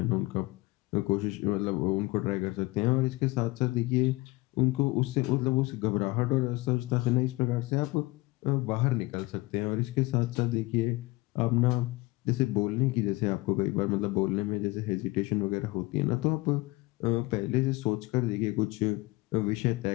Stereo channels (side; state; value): right; quieter; 22.2 dB